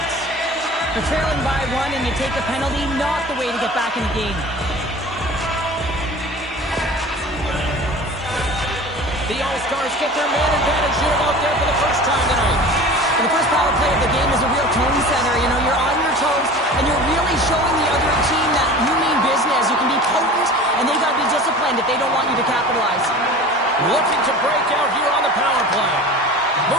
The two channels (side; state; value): both; normal; correlation 0.39